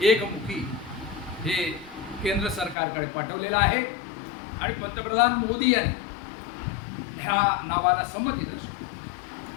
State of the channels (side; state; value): right; drops out; at 2.8 s